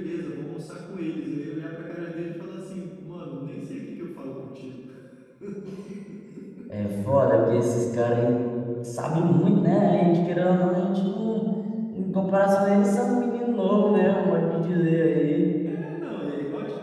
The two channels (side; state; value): both; identical; correlation 1.00